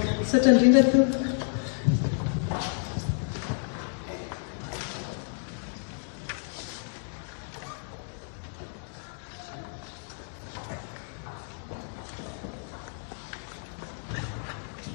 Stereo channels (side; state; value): right; silent; 57 dB below the other